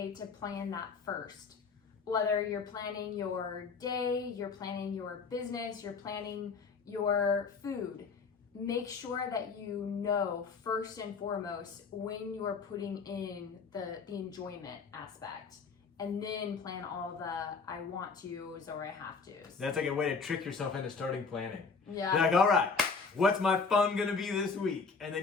to plan that first. Whether you're planning your day, you're planning your business, you're planning your food, make sure that you know first and foremost when you are putting in the enjoyment aspect, and then plan all the I want to's or I have to's. That's like a way to trick yourself into starting planning. Yeah. You're like, all right, what's my fun gonna be this week? And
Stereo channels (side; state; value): right; quieter; 5.0 dB